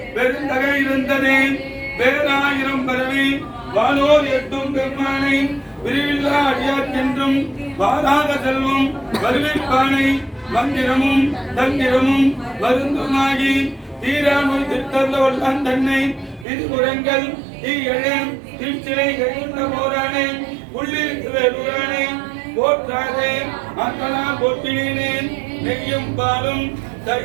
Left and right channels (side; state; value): left; drops out; at 16.4 s